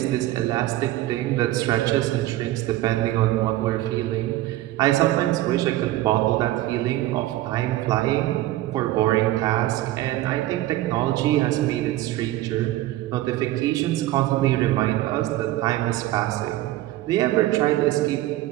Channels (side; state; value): left; quieter; 15.7 dB